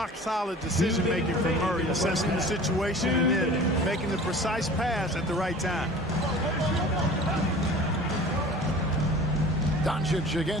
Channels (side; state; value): both; normal; correlation 0.43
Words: decision-making from Murray, assessing the situation and then making the precise pass at the right time. Doncic